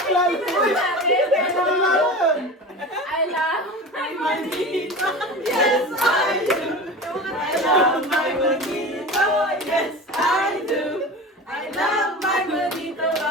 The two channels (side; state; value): both; normal; correlation 0.32